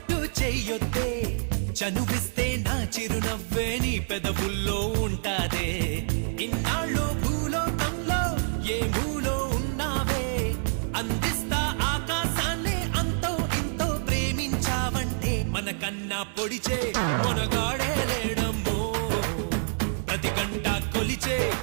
చెయ్యొద్దే చనువిస్తే నా చిరునవ్వే నీ పెదవుల్లో ఉంటాదే ఇన్నాళ్ళు భూలోకంలో ఏ మూలో ఉన్నావే అందిస్తా ఆకాశాన్ని అంతో ఇంతో ప్రేమించావంటే మనకన్నా పొడిచే మనగాడే లేడమ్మో ప్రతి గంట కొలిచే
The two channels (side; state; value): left; silent; 60 dB below the other